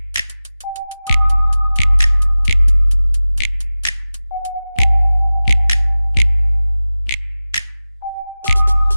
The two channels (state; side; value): inverted; both; correlation -0.96